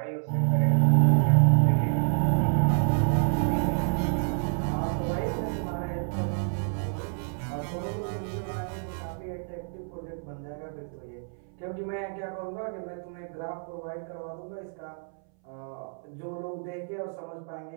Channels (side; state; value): left; silent; 59 dB below the other